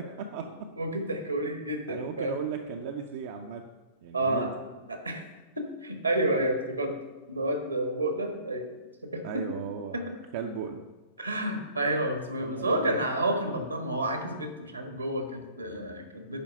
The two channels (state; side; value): inverted; both; correlation -0.52